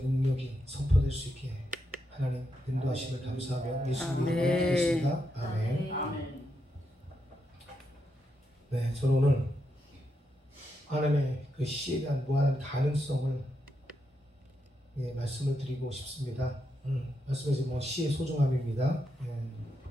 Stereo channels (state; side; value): normal; both; correlation 0.83